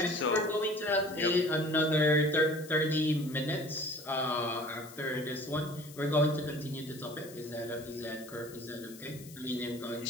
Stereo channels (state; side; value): noise; left; hiss, 18 dB below the sound